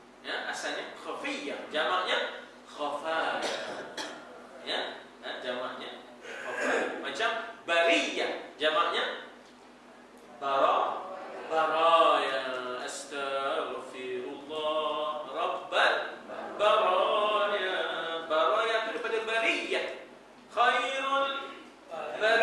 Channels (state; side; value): identical; both; correlation 1.00